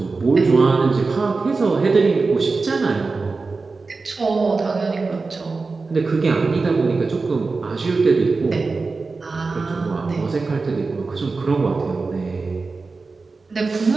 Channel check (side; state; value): left; quieter; 4.0 dB